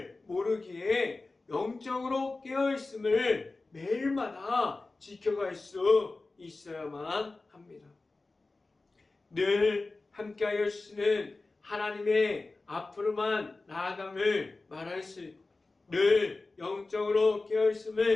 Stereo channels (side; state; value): right; quieter; 3.4 dB